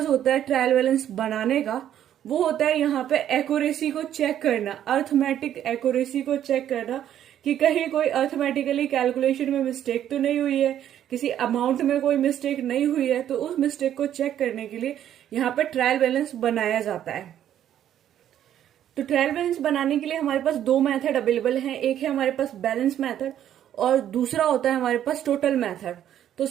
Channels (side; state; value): left; quieter; 10.8 dB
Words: होता है ट्रायल बैलेंस बनाने का वो होता है यहाँ पे एक्यूरेसी को चेक करना, अर्थमेटिक एक्यूरेसी को चेक करना कि कहीं कोई अर्थमेटिकली कैलकुलेशन में मिस्टेक तो नहीं हुई है, किसी अमाउंट में कोई मिस्टेक नहीं हुई है। तो उस मिस्टेक को चेक करने के लिए यहाँ पे ट्रायल बैलेंस बनाया जाता है। तो ट्रायल बैलेंस बनाने के लिए हमारे पास 2 मेथड अवेलेबल हैं। एक है हमारे पास बैलेंस मेथड और दूसरा होता है हमारे पास टोटल मेथड। तो